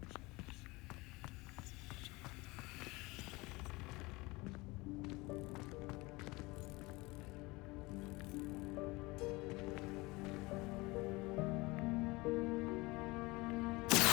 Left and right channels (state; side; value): quieter; right; 23.1 dB